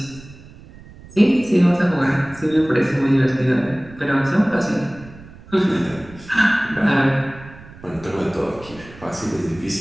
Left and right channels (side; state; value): right; noise; rumble, 20 dB below the sound